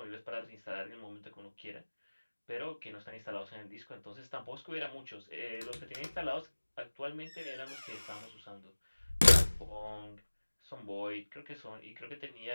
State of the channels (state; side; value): inverted; both; correlation -1.00